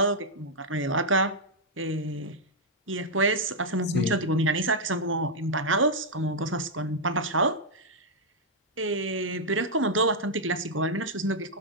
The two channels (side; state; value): both; normal; correlation -0.05